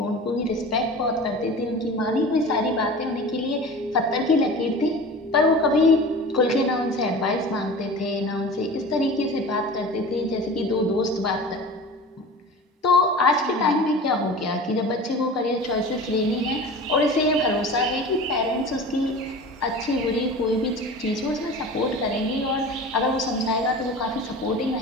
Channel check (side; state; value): both; normal; correlation 0.36